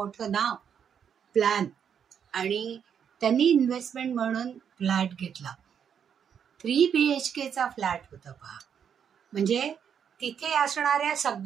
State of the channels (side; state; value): left; quieter; 7.9 dB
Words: नाव, प्लॅन, आणि त्यांनी इन्व्हेस्टमेंट म्हणून फ्लॅट घेतला. 3 BHKचा फ्लॅट होता पहा. म्हणजे तिथे असणाऱ्या